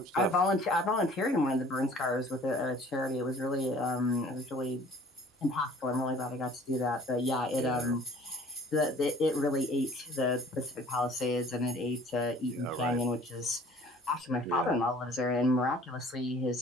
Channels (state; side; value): normal; both; correlation 0.51